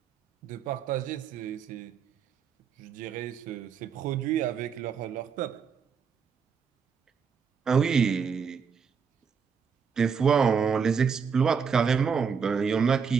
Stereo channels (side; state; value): left; quieter; 6.3 dB